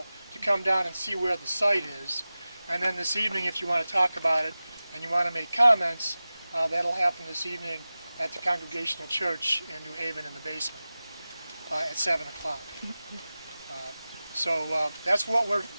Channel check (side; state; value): both; inverted; correlation -0.96